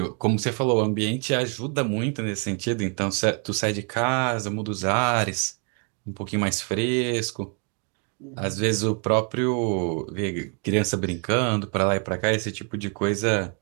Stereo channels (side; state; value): left; quieter; 37.7 dB